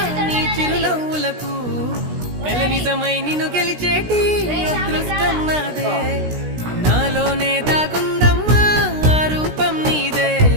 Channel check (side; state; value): left; late; 16 ms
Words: నీ చిరునవ్వులకు కల నిజమై నిన్ను గెలిచేటి అదృష్టం నాదే నాలోనే దాగుందమ్మా ఆ రూపం నీదే